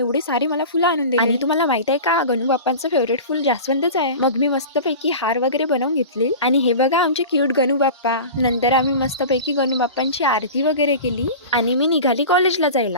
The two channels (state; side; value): inverted; both; correlation -0.34